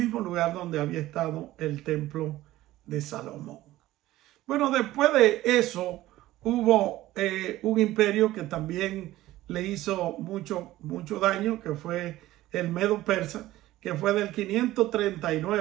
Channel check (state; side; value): quieter; left; 15.9 dB